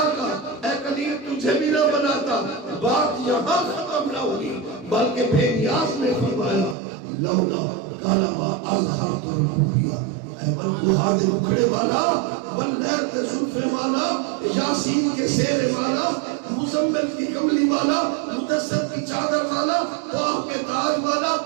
اے کلیم تجھے بھی نہ بناتا. بات یہاں ختم نہ ہوئی بلکہ بے نیاز نے فرمایا لولا کالما اظہرت الربوبیہ. اے بددعا دے مکھڑے والا، واللیل کے زلفے والا، یاسین کے سیرے والا، مزمل کی کملی والا، مدثر کی چادر والا، باہ کے تاج والا،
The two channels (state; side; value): drops out; left; at 6.8 s